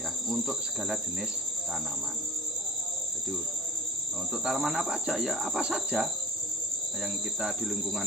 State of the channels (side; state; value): both; normal; correlation 0.45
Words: untuk segala jenis tanaman. Jadi untuk tanaman apa aja ya, apa saja yang kita di lingkungan